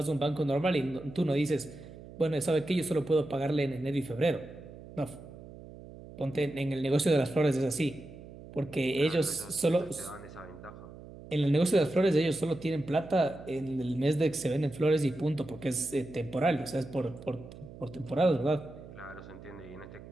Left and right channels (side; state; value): right; noise; hum, 16 dB below the sound